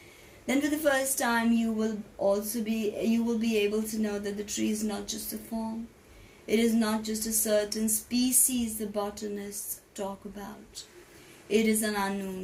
Then for the first time you will be able to know that the tree is not just a form. It is not just a certain species the botanists talk about. It is an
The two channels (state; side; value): identical; both; correlation 1.00